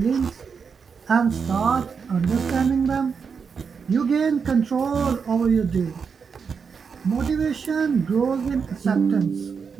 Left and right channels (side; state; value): left; quieter; 5.9 dB